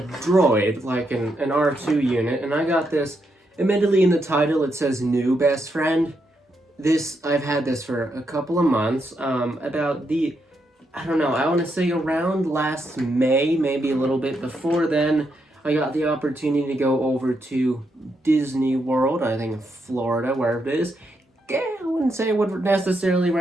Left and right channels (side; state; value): both; normal; correlation 0.81